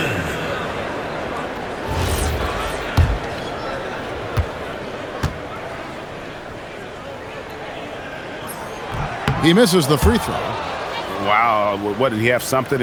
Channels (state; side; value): identical; both; correlation 1.00